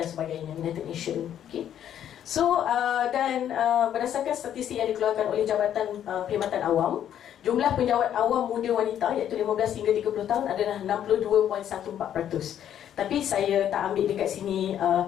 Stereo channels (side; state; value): right; quieter; 10.2 dB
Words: sebagainya, United Nations. Okay. So dan berdasarkan statistik yang dikeluarkan oleh Jabatan Perkhidmatan Awam, jumlah penjawat awam muda wanita iaitu 15 hingga 30 tahun adalah 62.14%. Tapi saya tak ambil dekat sini